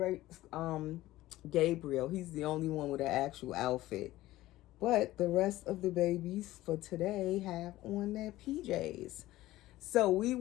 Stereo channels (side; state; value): right; quieter; 16.4 dB